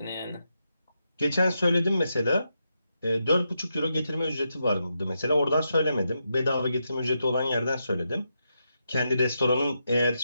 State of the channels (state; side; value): inverted; both; correlation -0.84